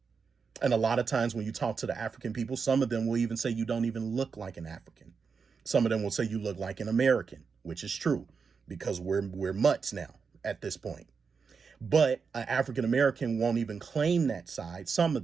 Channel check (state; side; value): quieter; left; 5.5 dB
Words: And a lot of times when you talk to the African people, some of them will even say you don't even look like an African. Some of them will say you look like an American, which is true because we're mutts now at this point. But an African American won't even claim that side. Some